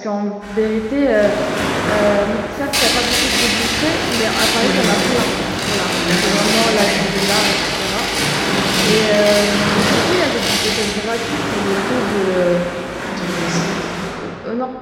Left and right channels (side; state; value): both; identical; correlation 1.00